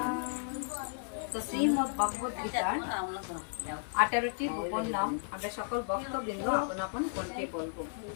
তো শ্রীমদ্ ভগবদ গীতার 18টি গোপন নাম আমরা সকল ভক্তবৃন্দ আপন আপন কণ্ঠে বলবো।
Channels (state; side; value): silent; right; digital silence